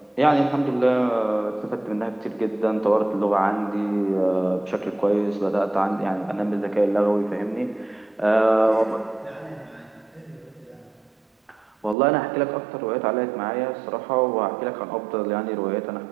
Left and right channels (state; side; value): drops out; left; at 12.0 s